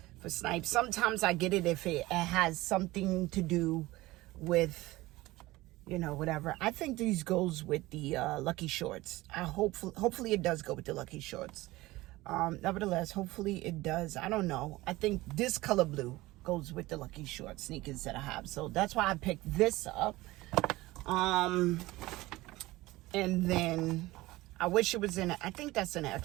for Snipes. Sometimes I get it if it has something to do with, you know, whatever. I think these goes with the Lucky Shorts. Hopefully it does go with the Lucky Shorts. Nevertheless, hopefully it does. I don't know. I think this color blue goes with the Lucky Short sneakers that I have. So that's why I picked this up. And then I wish it was in I think that's an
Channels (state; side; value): quieter; left; 19.1 dB